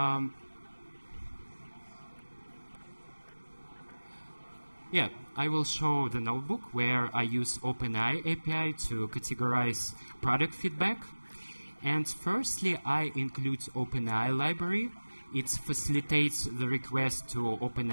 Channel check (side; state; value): both; inverted; correlation -1.00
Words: Yeah, I will show the notebook where I use Openai API to categorize product feedback. And firstly, I include Openai library. It facilitates the request to